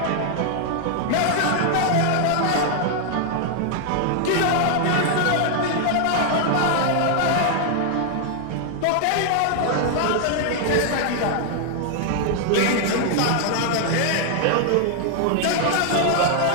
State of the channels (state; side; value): different; both; correlation 0.00